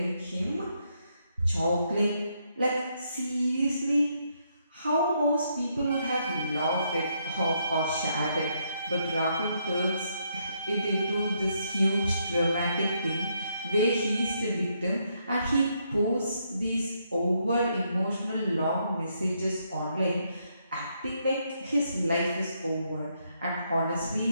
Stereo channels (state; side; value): inverted; both; correlation -0.76